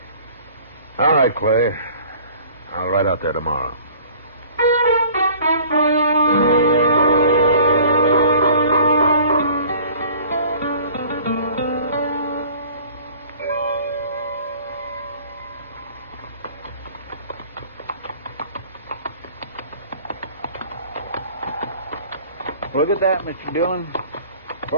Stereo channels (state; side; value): inverted; both; correlation -0.49